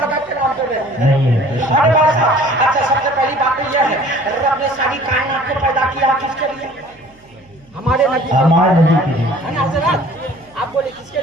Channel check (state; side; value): noise; right; hum, 30 dB below the sound